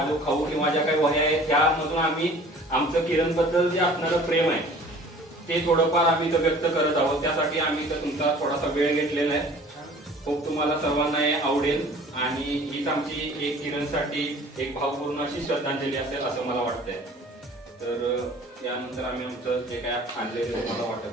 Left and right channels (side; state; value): both; normal; correlation 0.48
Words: जो खाऊ किंवा ज्या काही वह्या आहेत त्यामधून आम्ही आमचं किरण बद्दल जे असणारं प्रेम आहे ते थोडंफार आम्ही इथं व्यक्त करत आहोत. त्यासाठी आम्ही इथं तुमचा थोडासा वेळ घेतलेला आहे. खूप तुम्हाला सर्वांना हे आवडेल आणि हीच आमची एक किरणसाठी एक भावपूर्ण अशी श्रद्धांजली असेल असं मला वाटतंय. तर यानंतर आम्ही आमचं जे काय आणलेलं तुम्हाला